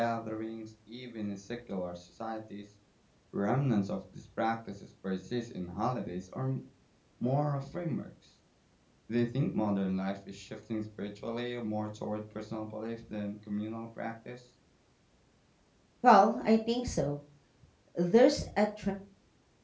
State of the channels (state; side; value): identical; both; correlation 1.00